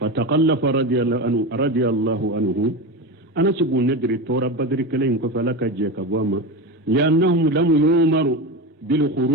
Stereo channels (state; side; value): normal; both; correlation 0.21